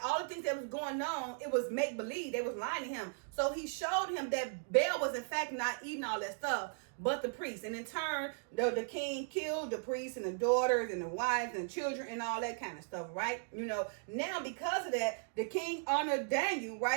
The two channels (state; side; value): silent; left; digital silence